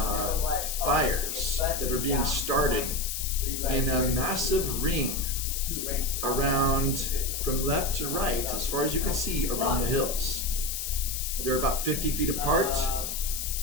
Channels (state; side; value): noise; left; hiss, 4 dB below the sound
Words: fires that are being started in a massive ring around, from left to right, as far as you can see, around the hills. They're about 50 feet apart,